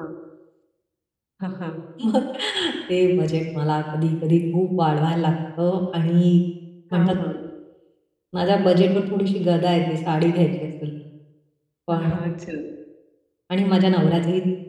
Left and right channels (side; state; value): both; identical; correlation 1.00